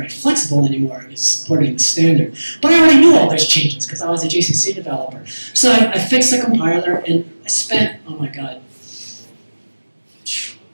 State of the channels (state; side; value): inverted; both; correlation -1.00